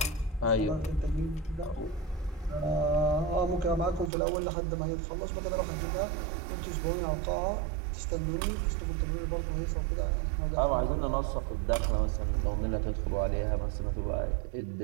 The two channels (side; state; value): left; drops out; at 4.1 s